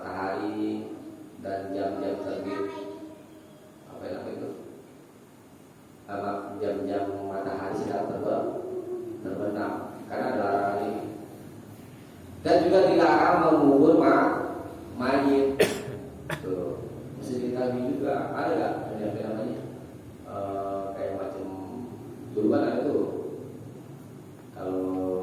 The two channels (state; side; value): identical; both; correlation 1.00